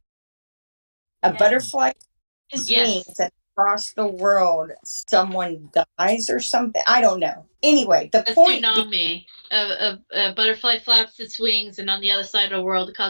A butterfly beats its wings and across the world someone dies or something. I don't know. Anyway, the point tsunami. A butterfly flaps its wings, and on the other side of the world, it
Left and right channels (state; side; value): inverted; both; correlation -1.00